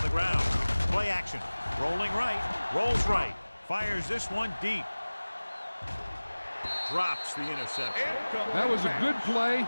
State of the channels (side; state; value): both; inverted; correlation -1.00